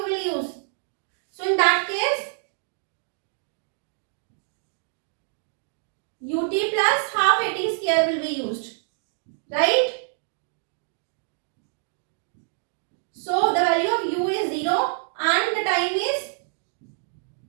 will use? So in that case, ut plus half at square will be used, right? So the value of u is 0 and the time is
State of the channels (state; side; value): silent; left; digital silence